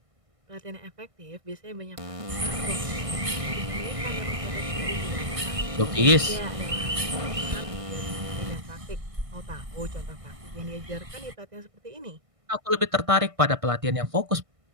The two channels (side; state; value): left; late; 1.6 ms